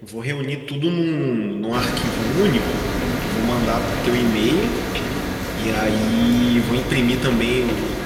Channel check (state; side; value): identical; both; correlation 1.00